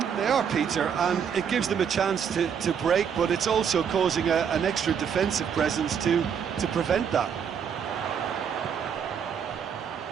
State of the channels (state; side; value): quieter; left; 7.5 dB